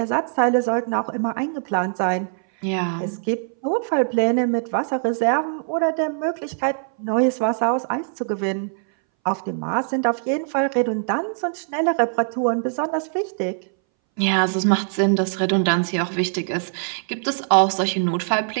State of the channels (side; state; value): left; silent; 62 dB below the other